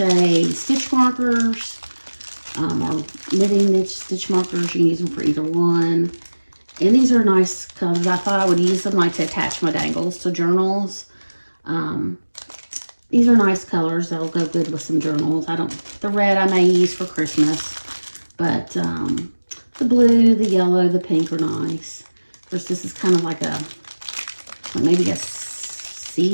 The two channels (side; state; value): both; inverted; correlation -1.00